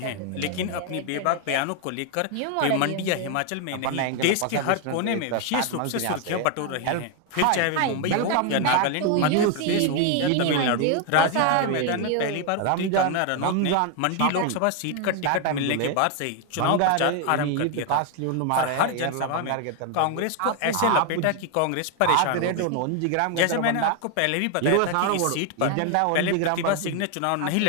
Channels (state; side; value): different; both; correlation 0.01